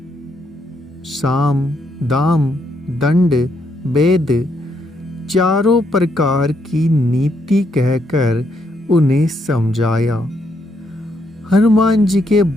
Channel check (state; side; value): normal; both; correlation 0.75